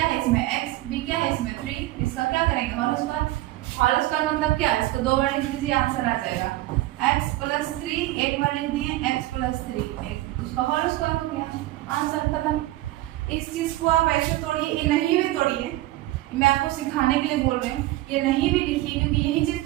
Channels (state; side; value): quieter; left; 17.1 dB